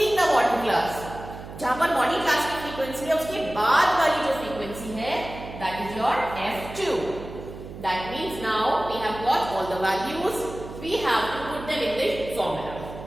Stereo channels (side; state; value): right; noise; hum, 13 dB below the sound